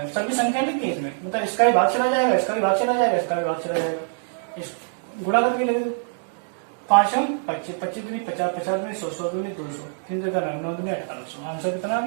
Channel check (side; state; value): left; silent; digital silence